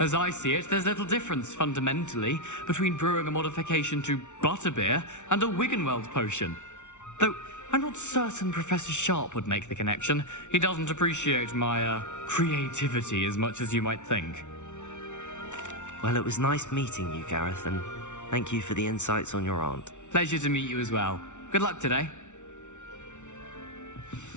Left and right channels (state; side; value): late; right; 0.84 ms